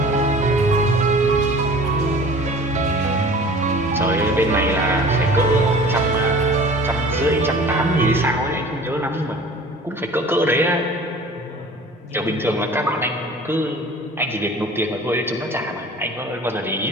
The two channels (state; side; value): normal; both; correlation 0.44